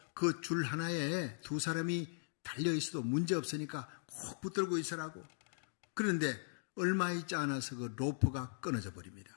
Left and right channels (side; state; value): right; silent; digital silence